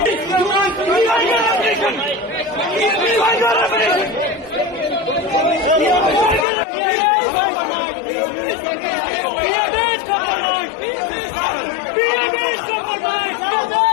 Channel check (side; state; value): right; drops out; at 6.5 s